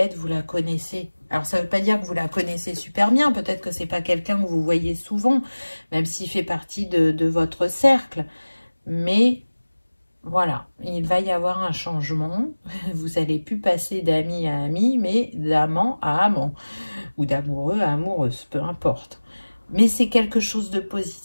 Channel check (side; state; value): both; inverted; correlation -1.00